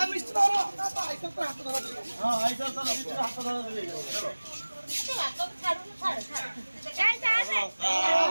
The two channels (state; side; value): inverted; both; correlation -1.00